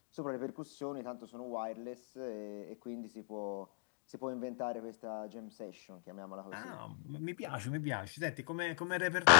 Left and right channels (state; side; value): silent; right; digital silence